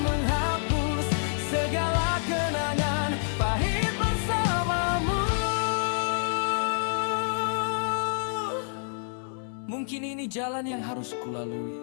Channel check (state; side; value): silent; right; digital silence